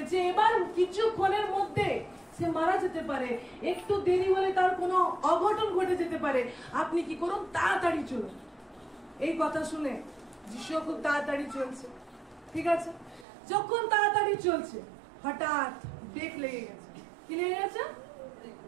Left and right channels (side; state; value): left; drops out; at 13.2 s